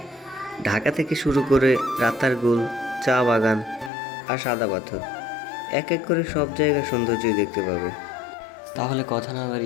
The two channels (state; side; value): drops out; right; at 3.9 s